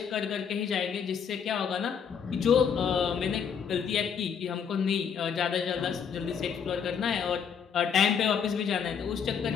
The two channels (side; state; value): right; quieter; 7.2 dB